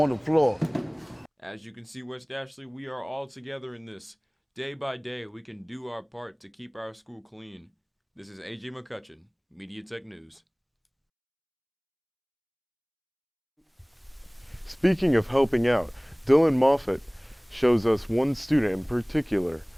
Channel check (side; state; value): both; identical; correlation 1.00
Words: the floor. As you can see, West Ashley, we are all together in this. Day by day, we can do our part to keep our school clean. This is AJ McCutchen, Media Tech News. Speaking of helping out, Dillon Moffatt shows us one student in particular